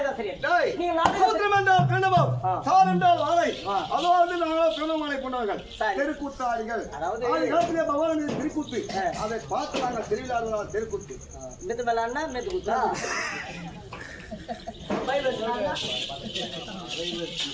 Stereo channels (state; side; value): identical; both; correlation 1.00